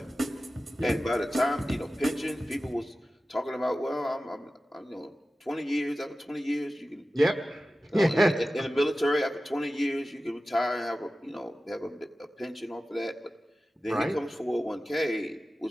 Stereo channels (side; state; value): both; normal; correlation 0.95